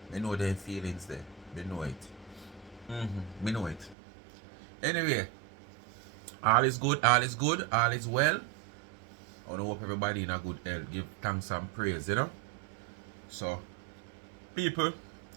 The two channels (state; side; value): drops out; left; at 4.0 s